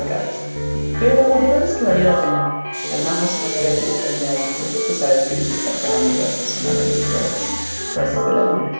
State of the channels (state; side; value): inverted; both; correlation -1.00